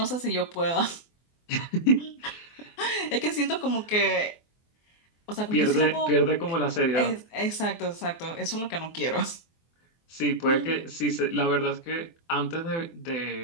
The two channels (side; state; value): right; late; 24 ms